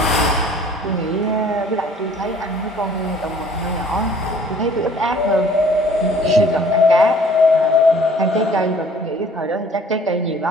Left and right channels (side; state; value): both; normal; correlation 0.54